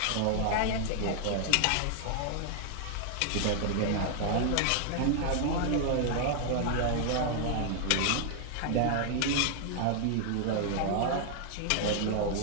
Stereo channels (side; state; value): both; different; correlation 0.00